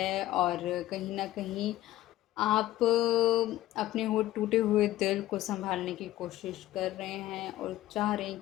और कहीं न कहीं आप अपने वो टूटे हुए दिल को सँभालने की कोशिश कर रहे हैं और चाह रहे हैं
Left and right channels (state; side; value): quieter; right; 15.0 dB